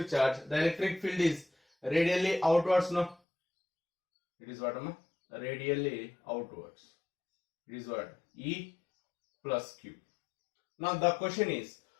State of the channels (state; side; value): drops out; right; at 3.2 s